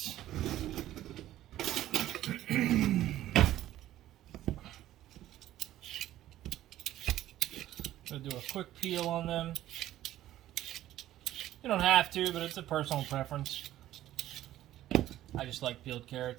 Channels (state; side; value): quieter; left; 13.7 dB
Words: Gonna do a quick peel on them. You don't have to, but it's a personal preference. I just like peeled